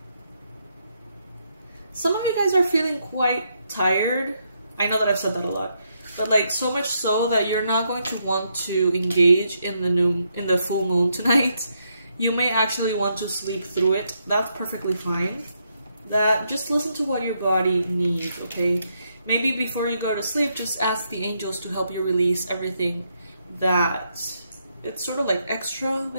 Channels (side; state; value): both; inverted; correlation -0.78